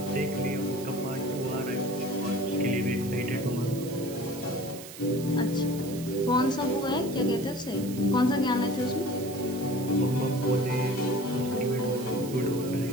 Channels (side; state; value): right; noise; hiss, 14 dB below the sound